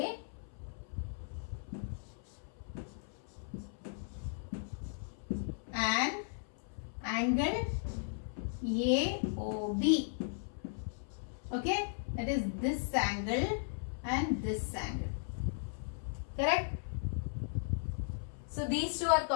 and angle AOB. Okay, that is this angle and this angle. Correct? So these two are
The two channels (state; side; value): silent; right; 53 dB below the other